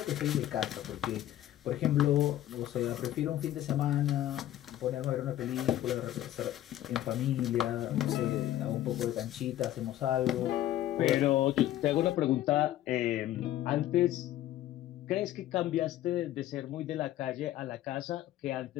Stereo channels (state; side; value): quieter; right; 13.4 dB